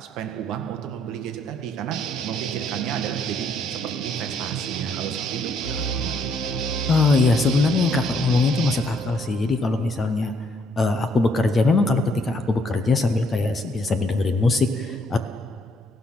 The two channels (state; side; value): normal; both; correlation 0.68